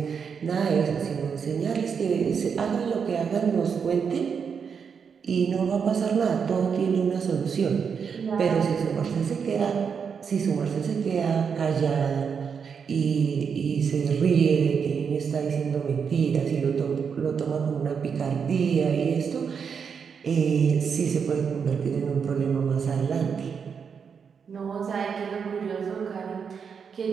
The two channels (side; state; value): left; quieter; 6.5 dB